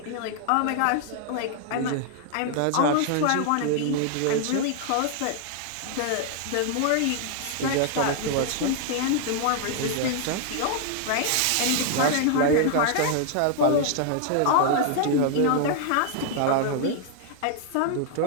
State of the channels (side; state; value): both; different; correlation 0.00